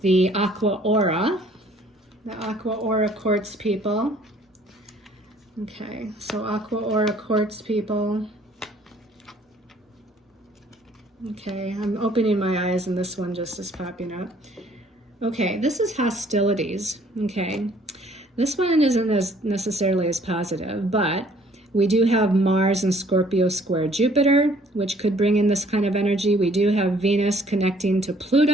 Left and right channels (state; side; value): normal; both; correlation 0.59